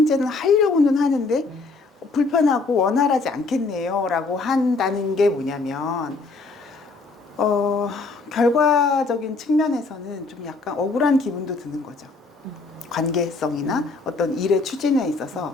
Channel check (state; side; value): quieter; right; 3.8 dB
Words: 하려고는 하는데 불편하고 원활하지 않겠네요 라고 한다는 게 뭐냐면 결과적인 측면에서는 좀 약간 억울한 기분도 드는 거죠. 관계성이나 어떤 일의 추진에 있어서